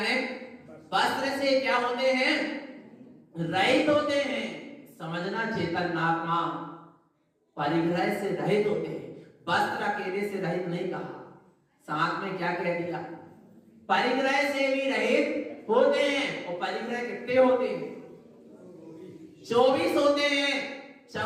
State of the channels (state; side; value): identical; both; correlation 1.00